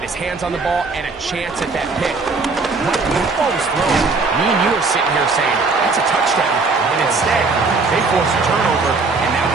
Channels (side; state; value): left; quieter; 4.1 dB